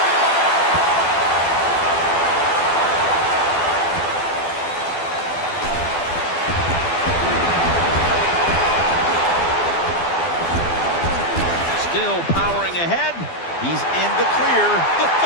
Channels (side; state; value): right; late; 12 ms